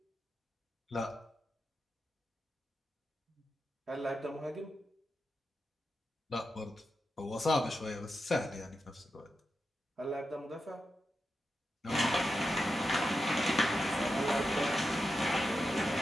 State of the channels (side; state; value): both; normal; correlation 0.88